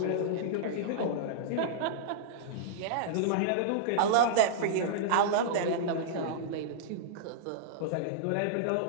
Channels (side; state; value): both; different; correlation -0.02